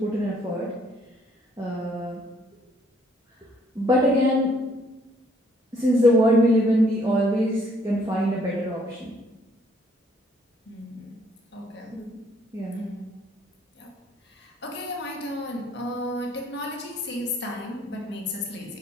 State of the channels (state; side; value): normal; both; correlation 0.65